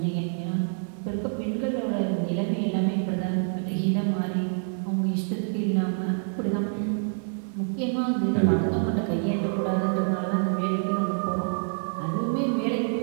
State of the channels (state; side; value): silent; left; 60 dB below the other